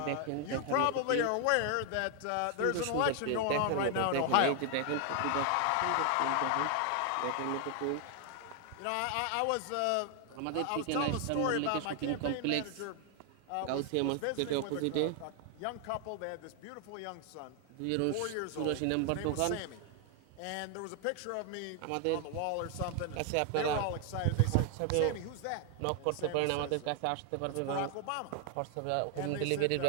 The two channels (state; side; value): different; both; correlation 0.00